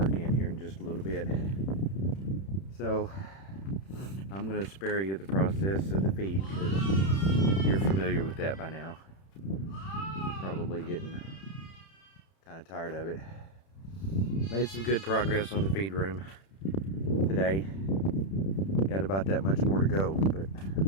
here in just a little bit. So I'm going to spare you the process of the feed, because you're familiar with that by now. Probably getting kind of tired of it. Made some good progress on the feed room today. Got about that much more to go, but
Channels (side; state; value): right; late; 31 ms